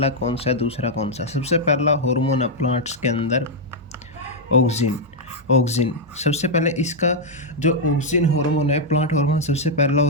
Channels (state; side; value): normal; both; correlation -0.02